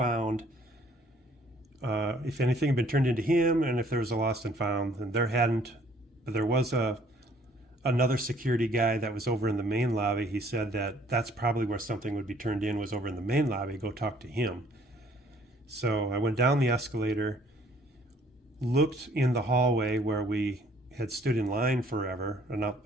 if anything had been turned into him, and if there was a lost and found. And there hadn't, but there was another security guy that was over in the main lobby. He said that that's probably where something would be turned in, was over in the main lobby. Go talk to him. So I went down the escalator, looked in the hallway where we had stood in line forever, and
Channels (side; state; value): both; normal; correlation 0.60